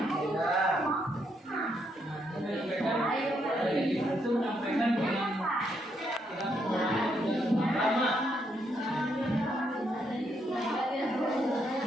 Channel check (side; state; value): both; normal; correlation 0.76